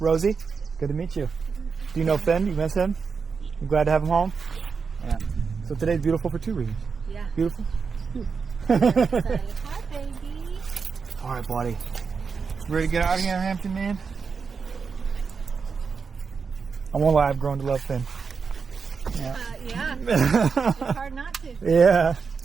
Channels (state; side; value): quieter; left; 5.4 dB